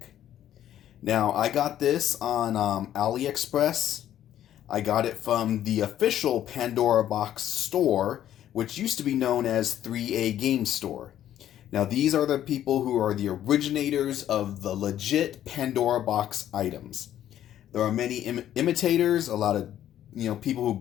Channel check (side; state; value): right; quieter; 11.5 dB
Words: Now, I got this on AliExpress. I got it from the official Pandora box store, which used to be known as 3A Game Store. Now, these are the people who are the originators of the legit Pandora box items. There are many imitators, a lot of people who